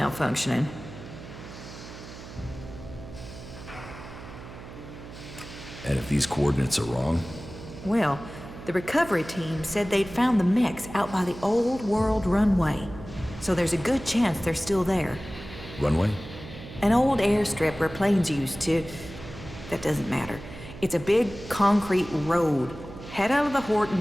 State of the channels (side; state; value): right; noise; hum, 14 dB below the sound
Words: And if these coordinates are wrong? Well, the recovery team said they'd found the mechs out by the old world runway. So there's a good chance they're still there. Runway? An old airstrip where planes used to... That doesn't matter. It's a big concrete road. Head out of the Horde